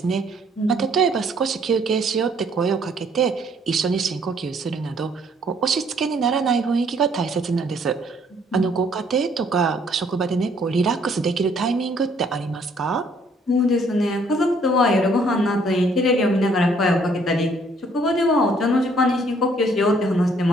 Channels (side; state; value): both; normal; correlation 0.64